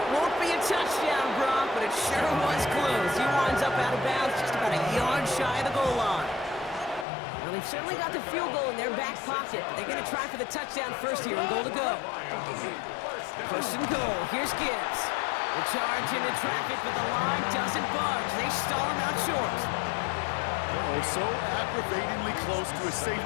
won't be a touchdown, Brock, but it sure was close. He winds up out of bounds just about a yard shy of the goal line. Well, they've certainly got the field goal in their back pocket. They're going to try for the touchdown first here and goal to go. First and goal. Here's Gibbs. The charge into traffic, but the line doesn't budge. They stall him out short. Oh, so aggravatingly close to a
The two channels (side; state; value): right; drops out; at 7.1 s